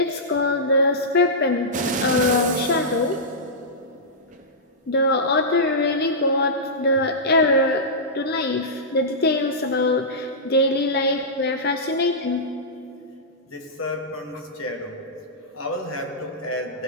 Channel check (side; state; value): both; normal; correlation -0.14